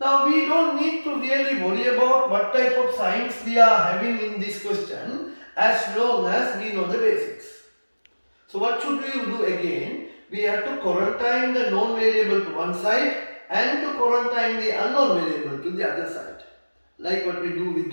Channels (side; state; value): both; inverted; correlation -1.00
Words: Now we don't need to really worry about what type of signs we are having in this question as long as we know the basics. So what should we do again? We have to quarantine the known variable to one side and to quarantine the unknown variable to the other side, like what we do with